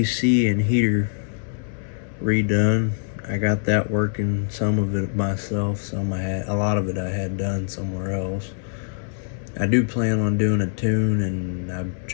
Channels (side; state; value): right; silent; 63 dB below the other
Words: and heater redone. I got that working, some of it myself, a lot of it I had done somewhere else. I do plan on doing a tune, and I've